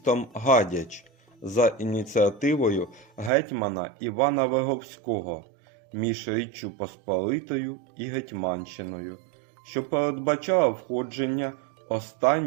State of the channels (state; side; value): drops out; left; at 3.3 s